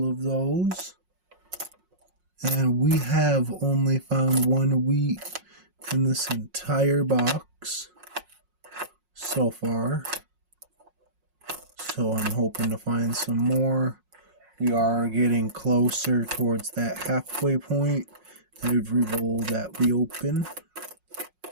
of those. And we have only found one wheat in this entire box so far. So I'm hoping to find some more. We are getting closer towards that halfway point every roll that we open.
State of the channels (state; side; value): late; left; 5.5 ms